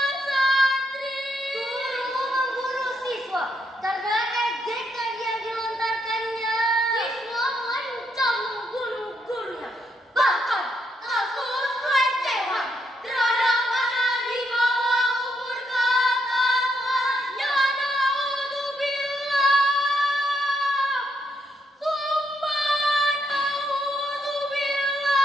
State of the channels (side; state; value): both; normal; correlation 0.77